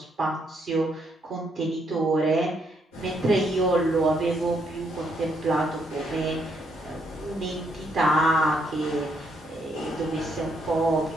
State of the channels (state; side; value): normal; both; correlation 0.74